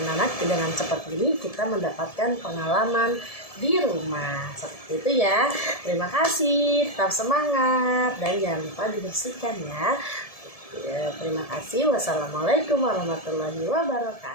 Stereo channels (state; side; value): late; right; 1.7 ms